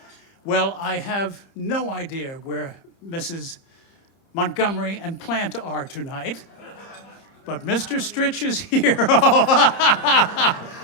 Well, I have no idea where Mrs. Montgomery and Plant are tonight, but Mr. Stritch is here.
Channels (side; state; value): right; late; 30 ms